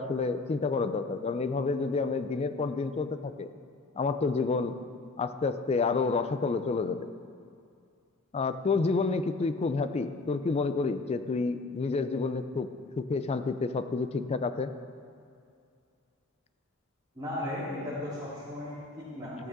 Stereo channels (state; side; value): quieter; right; 3.6 dB